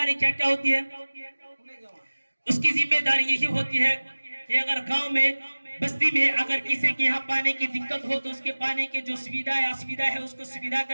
کیا کیا ہوتی ہے؟ اس کی ذمہ داری یہی ہوتی ہے کہ اگر گاؤں میں بستی میں اگر کسی کے یہاں پانی کی دقت ہو تو اس کے پانی کے جو سویدھا ہے اس کو سویدھا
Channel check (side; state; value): both; inverted; correlation -1.00